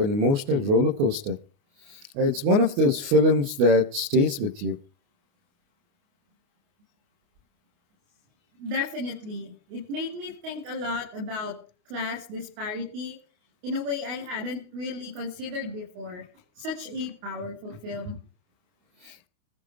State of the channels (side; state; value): left; late; 29 ms